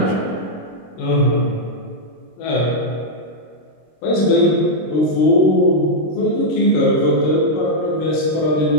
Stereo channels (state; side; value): late; right; 26 ms